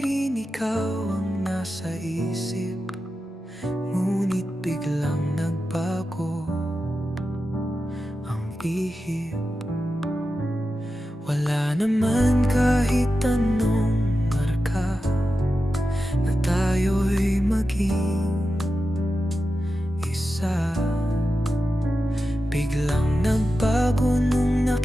rin ikaw ang nasa isip. Ngunit biglang nagbago ang ihip. Wala naman kahit anong marka na tayo'y maging isa. Biglang nagbago nung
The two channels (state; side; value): normal; both; correlation 0.91